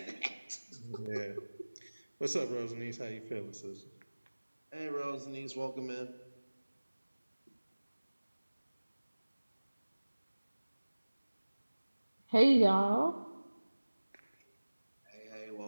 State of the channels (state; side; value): inverted; both; correlation -1.00